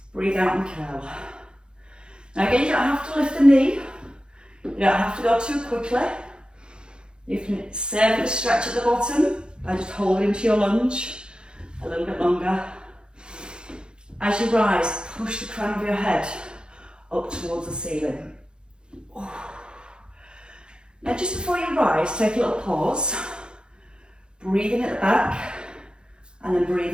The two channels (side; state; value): left; late; 0.049 ms